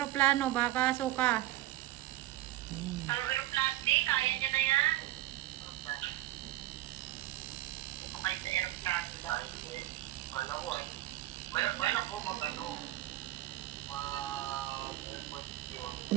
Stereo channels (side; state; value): left; quieter; 15.7 dB